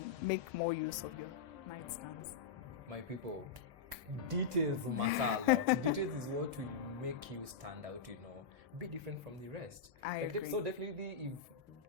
make more use of your nightstands. My people, details matter a lot. Details is what will make you stand out, be different from the rest. I agree. So definitely,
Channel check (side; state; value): right; quieter; 5.6 dB